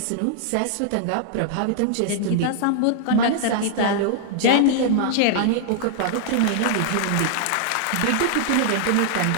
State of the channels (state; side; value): different; both; correlation 0.00